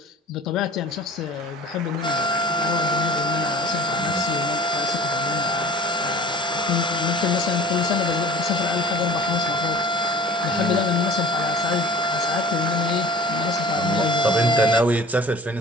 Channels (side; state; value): both; normal; correlation 0.44